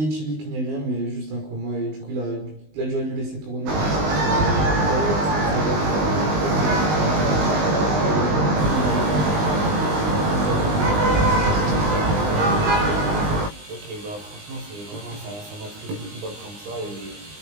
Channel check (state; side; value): late; left; 20 ms